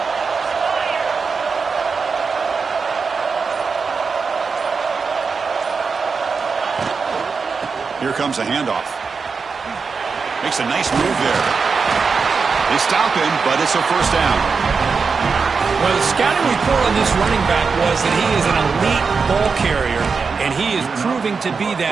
Here comes a handoff. Makes a nice move there. They stop him, but it's a first down. Well, the scouting report on this running back was that he is an elite ball carrier, and he is proving to be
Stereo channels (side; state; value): left; quieter; 5.1 dB